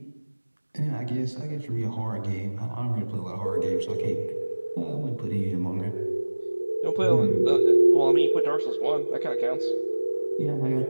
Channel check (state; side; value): inverted; both; correlation -1.00